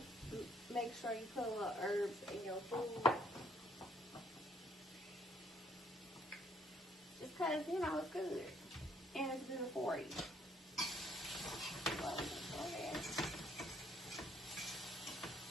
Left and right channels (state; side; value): normal; both; correlation 0.66